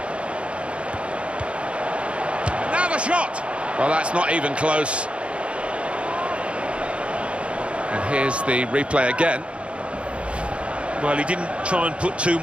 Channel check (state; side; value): late; left; 0.059 ms